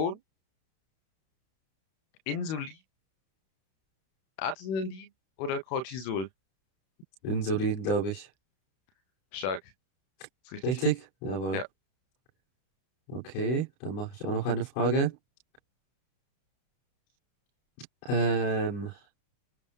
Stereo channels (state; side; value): late; right; 32 ms